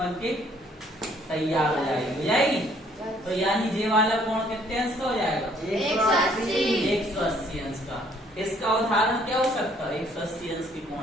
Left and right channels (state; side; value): normal; both; correlation 0.63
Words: के तैयार हो जाएगी तो यानी ये वाला कोण कितने अंश का हो जाएगा 180 अंश का। इसका उदाहरण क्या हो सकता है 180 अंश के